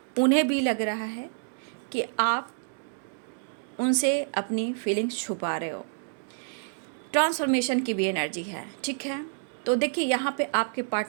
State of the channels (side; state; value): left; silent; digital silence